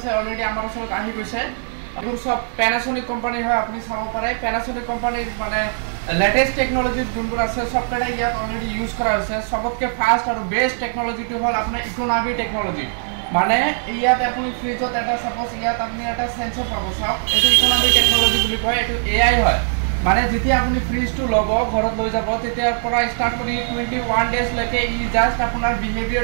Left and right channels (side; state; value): left; silent; digital silence